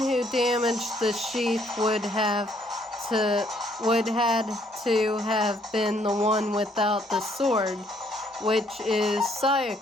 damaged the sheath would had to have been the one without the sword, which is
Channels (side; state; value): both; normal; correlation 0.67